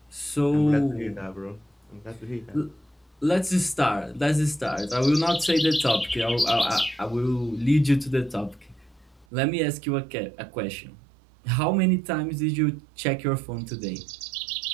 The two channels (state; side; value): drops out; left; at 9.2 s